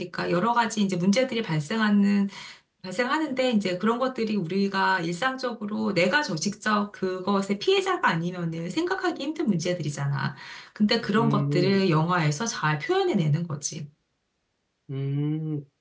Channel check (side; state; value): both; identical; correlation 1.00